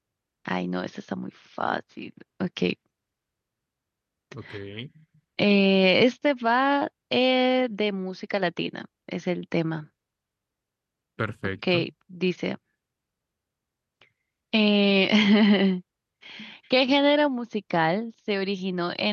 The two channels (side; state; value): both; identical; correlation 1.00